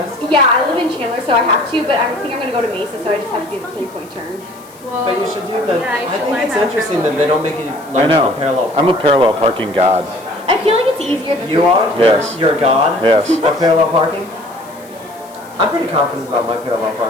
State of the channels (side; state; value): left; noise; hiss, 24 dB below the sound